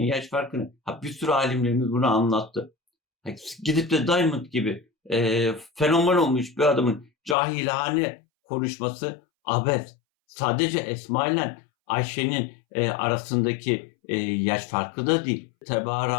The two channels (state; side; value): drops out; right; at 7.4 s